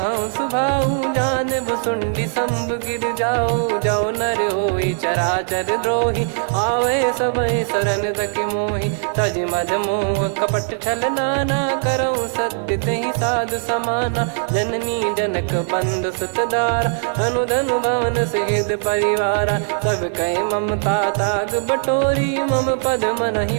सुभाऊ, जान भुसुंडी शंभ गिर जाओ, जाओ नर होई चराचर द्रोही, आवे सबय शरण तक मोहि, तज मद मोह कपट छल नाना, करऊँ सत्य तहि साधु समाना, जननी जनक बंधु सुतदारा, धनु धनु भवन सहित परिवारा, सब कहे ममता ताग बटोरी, मम पद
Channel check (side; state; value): left; silent; digital silence